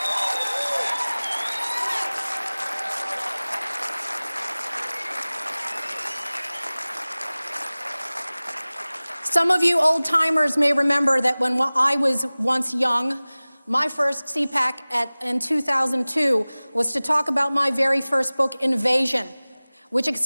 Some of you old-timers may remember that when I was once young, my first CPAC in 2002 was to talk about my very first book, Invasion, which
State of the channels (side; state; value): both; inverted; correlation -0.99